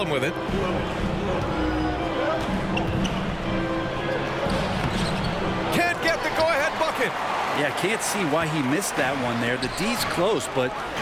with it. Can't get the go-ahead bucket. Yeah, can't see why he missed that one there. The D's close, but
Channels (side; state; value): both; identical; correlation 1.00